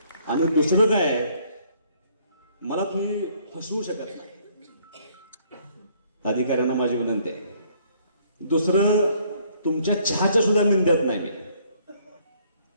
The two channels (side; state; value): both; inverted; correlation -0.64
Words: आणि दुसरं काय आहे, मला तुम्ही फसवू शकत नाही. अधिकाऱ्यांना माझी विनंती आहे. दुसरं, तुमच्या चहाच्या सुद्धा निंद्यात नाही मी,